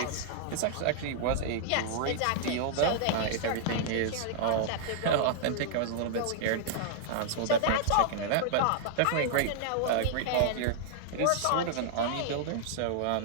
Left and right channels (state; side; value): different; both; correlation -0.01